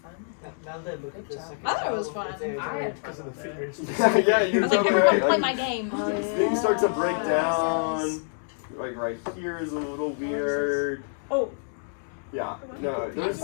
fun. Now that I look at this, I thought it was fun. I had because of the fingers. Yeah, I you was like, totally everyone right. play my game. Things start to break down. Like right here is a little weird. Oh. Yeah, no,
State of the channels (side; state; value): right; silent; digital silence